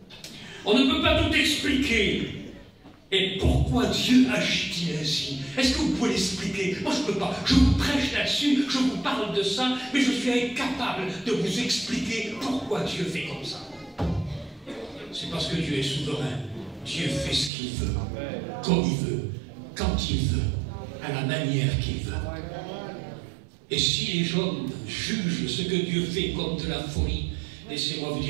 On ne peut pas tout expliquer. Et pourquoi Dieu agit-il ainsi? Est-ce que vous pouvez l'expliquer? Moi, je ne peux pas. Je vous prêche là-dessus, je vous parle de ça, mais je suis incapable de vous expliquer pourquoi Dieu fait comme ça. C'est parce que Dieu est souverain. Dieu fait ce qu'il veut, comme il veut, quand il veut, à la manière qu'il veut. Et si les hommes jugent ce que Dieu fait comme de la folie, laissez-moi vous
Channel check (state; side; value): drops out; left; at 17.5 s